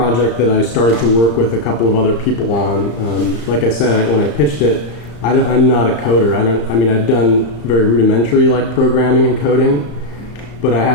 that I started to work with a couple of other people on. Like I said, when I pitched it, I'm not a coder. I've done very rudimentary like programming and coding, but I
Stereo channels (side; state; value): right; late; 35 ms